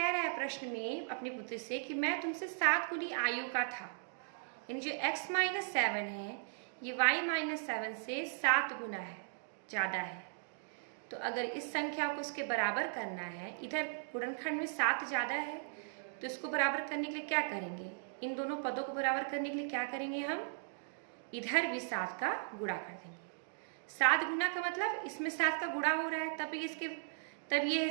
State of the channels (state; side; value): silent; left; digital silence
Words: रहा है प्रश्न में अपनी पुत्री से कि मैं तुमसे 7 गुनी आयु का था, यानी जो x माइनस 7 है ये y माइनस 7 से 7 गुना है, ज़्यादा है। तो अगर इस संख्या को इसके बराबर करना है, इधर गुणनखंड में 7 ज़्यादा है, तो इसको बराबर करने के लिए क्या करेंगे? इन दोनों पदों को बराबर करने के लिए क्या करेंगे? हम इधर भी 7 का गुणा कर देंगे। 7 गुना का मतलब इसमें 7 का गुणा हो रहा है, तब ये